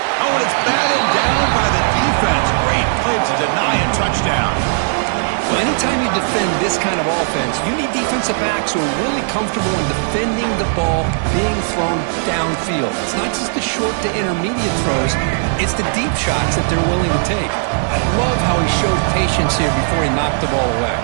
Oh, and it's batted down by the defense. Great play to deny a touchdown. Well, anytime you defend this kind of offense, you need defensive backs who are really comfortable in defending the ball being thrown downfield. It's not just the short to intermediate throws, it's the deep shots that they're willing to take. I love how he showed patience here before he knocked the ball away.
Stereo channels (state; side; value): silent; left; digital silence